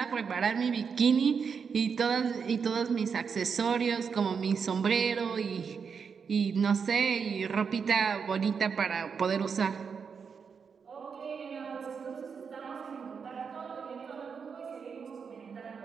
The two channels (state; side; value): quieter; left; 6.1 dB